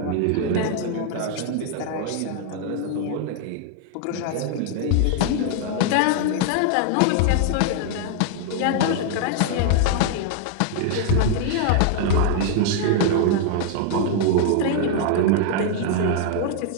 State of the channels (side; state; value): both; different; correlation 0.00